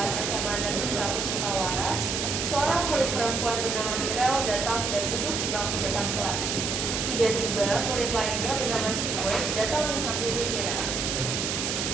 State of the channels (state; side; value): noise; right; hiss, 1 dB below the sound